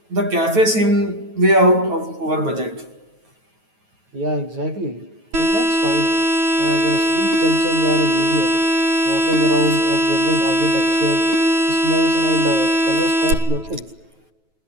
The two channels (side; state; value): left; late; 9.3 ms